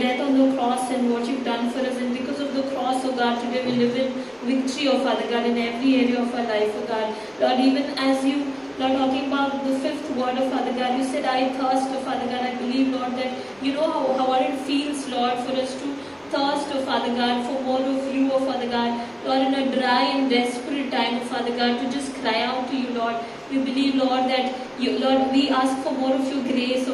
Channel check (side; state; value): both; identical; correlation 1.00